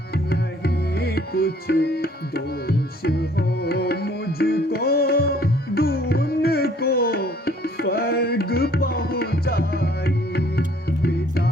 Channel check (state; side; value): normal; both; correlation 0.58